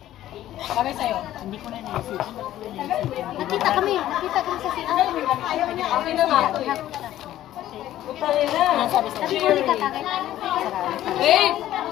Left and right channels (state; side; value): quieter; right; 13.3 dB